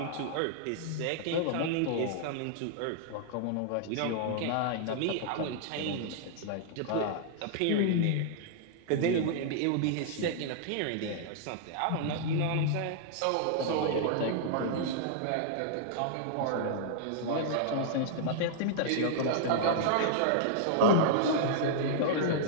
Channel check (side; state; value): both; different; correlation -0.01